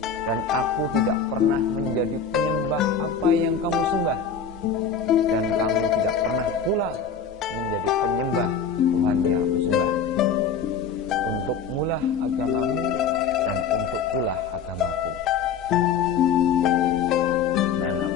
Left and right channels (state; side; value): quieter; right; 6.1 dB